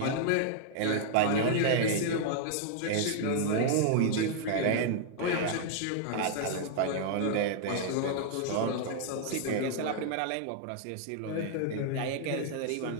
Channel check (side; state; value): both; different; correlation 0.00